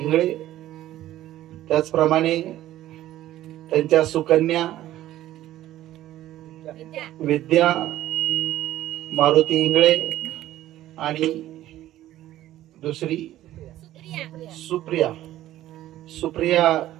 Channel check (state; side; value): quieter; left; 14.0 dB